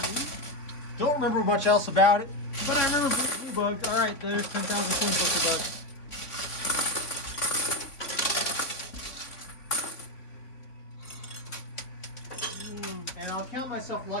Don't remember much else about it, but I remember Blue Bug. All right, there's 10,000 coin pusher bucks. Man. And I'll count myself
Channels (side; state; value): right; late; 3.5 ms